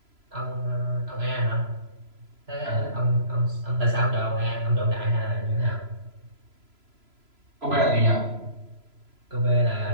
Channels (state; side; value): late; left; 3.0 ms